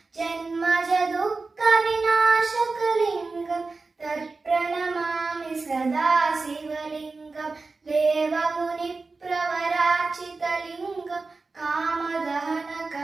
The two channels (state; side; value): quieter; left; 3.9 dB